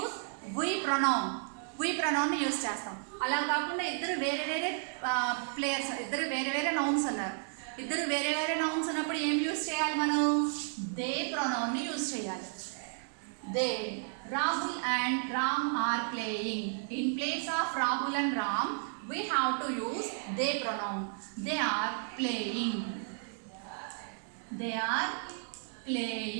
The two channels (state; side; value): silent; left; 56 dB below the other